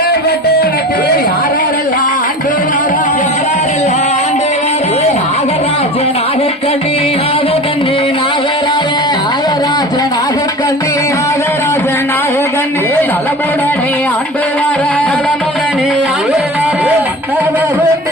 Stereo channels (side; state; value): both; normal; correlation 0.36